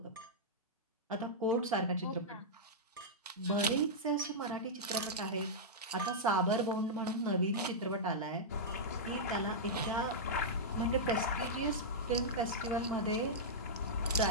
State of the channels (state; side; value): normal; both; correlation -0.10